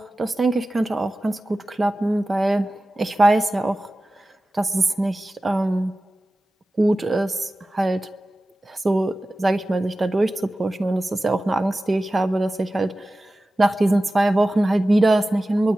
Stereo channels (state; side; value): normal; both; correlation 0.95